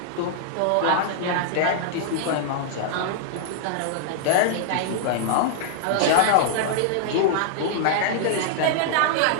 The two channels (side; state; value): both; different; correlation -0.01